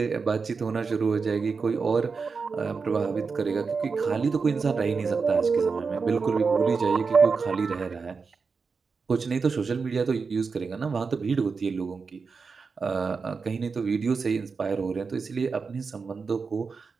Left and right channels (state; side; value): quieter; left; 5.0 dB